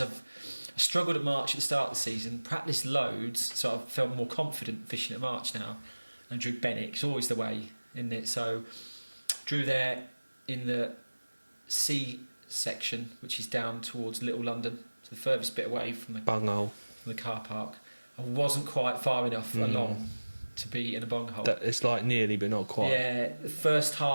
I struggled at March at the start of the season, practiced loads, so I felt more confident fishing at March now. And drew Benwick. It's always the way, isn't it? So drew there in the C section, which is down towards Little London, so the furthest bit away from the Bunghole. car park. I wasn't quite far enough along to be in a bunghole. It's like nearly, but not quite. Yeah, the first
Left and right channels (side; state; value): both; inverted; correlation -1.00